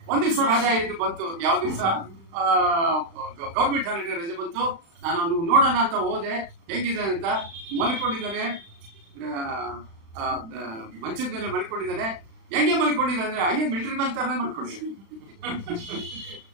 ಒಂದ್ ದಿವಸ ರಜಾ ಇದ್ದು ಬಂತು, ಯಾವ ದಿವಸ ಗೌರ್ಮೆಂಟ್ ಹಾಲಿಡೇ ರಜೆ ಬಂತು. ನಾನು ಅವ್ನು ನೋಡೋಣ ಅಂತ ಹೋದೆ, ಹೆಂಗಿದೆ ಅಂತ. ಮಲ್ಕೊಂಡಿದ್ದಾನೆ, ಮಂಚದ ಮೇಲೆ ಮಲ್ಕೊಂಡಿದ್ದಾನೆ. ಹೆಂಗೆ ಮಲ್ಕೊಂಡಿದ್ದಾನೆ ಅಂದ್ರೆ ಹಾಗೆ ಮಿಲಿಟರಿ ಮ್ಯಾನ್ ತರ ಮಲ್ಕೊಂಡಿದ್ದಾನೆ.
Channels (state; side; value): late; left; 36 ms